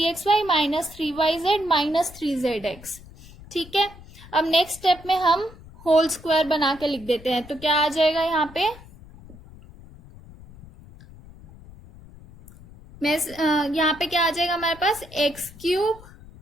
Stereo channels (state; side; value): noise; left; rumble, 20 dB below the sound